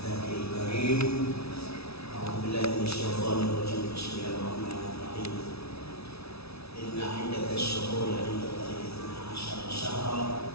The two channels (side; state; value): right; late; 0.78 ms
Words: karim. A'udzu billahi minasyaitonir rajim. Bismillahirrahmanirrahim. Inna 'iddatash shuhuri 'inda Allahi 12 syahran